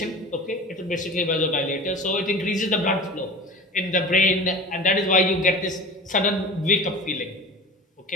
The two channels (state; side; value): normal; both; correlation 0.36